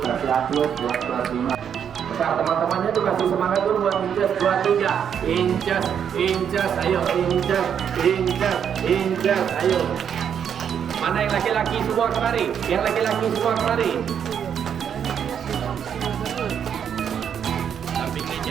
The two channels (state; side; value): quieter; left; 8.2 dB